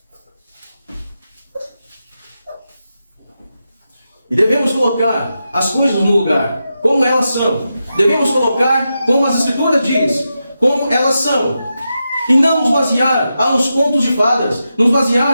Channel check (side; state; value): both; inverted; correlation -0.89